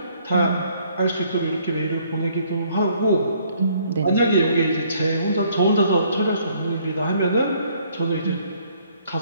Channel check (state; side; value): inverted; both; correlation -0.64